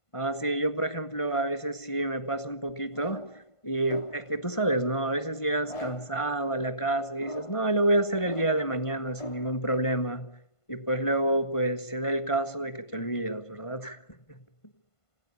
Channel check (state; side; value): late; right; 1.5 ms